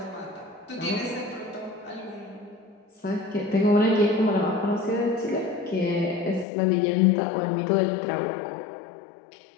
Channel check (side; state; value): right; drops out; at 6.5 s